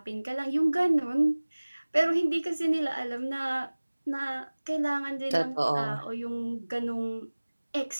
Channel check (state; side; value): inverted; both; correlation -1.00